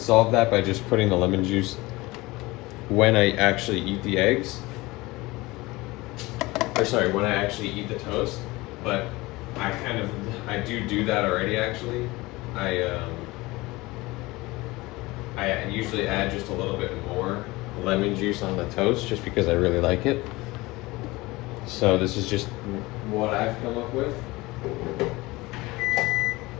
that by just putting the lemon juice when I actually eat the eggs. When I actually eat the toast, but I do that already actually. I usually add just a little bit more lemon juice on the toast just because I really like it. So this is just what I've come up with.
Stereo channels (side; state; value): right; quieter; 21.3 dB